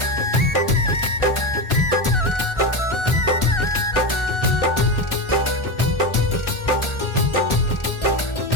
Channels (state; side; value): late; right; 1.4 ms